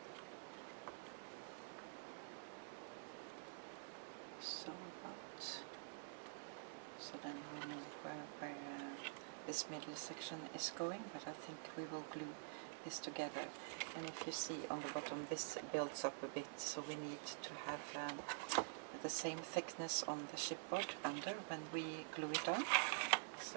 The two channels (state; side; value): silent; left; digital silence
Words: So then we know where this middle section is going, but I think we will glue this together. And if you see on the bottom, this builds up a bit, so we need to have the same thickness on the chipboard under when we glue it on.